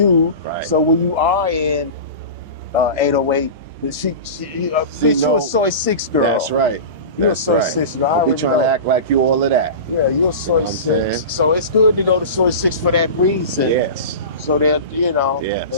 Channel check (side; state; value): both; inverted; correlation -0.30